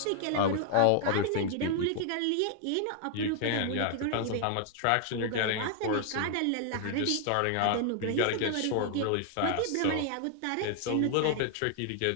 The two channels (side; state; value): both; different; correlation 0.00